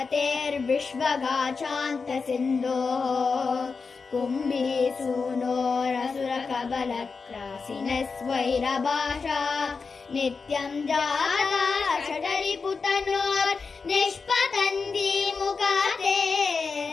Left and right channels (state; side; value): quieter; right; 4.8 dB